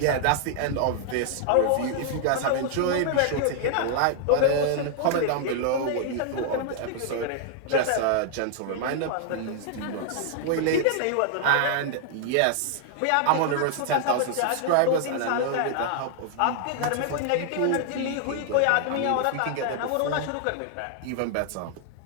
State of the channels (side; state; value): both; different; correlation 0.00